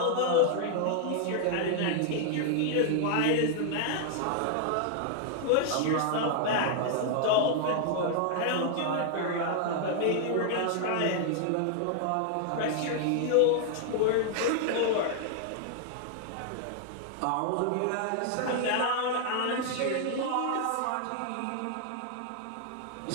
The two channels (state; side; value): different; both; correlation 0.00